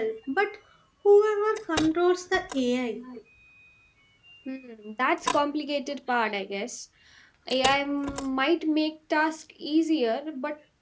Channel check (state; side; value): identical; both; correlation 1.00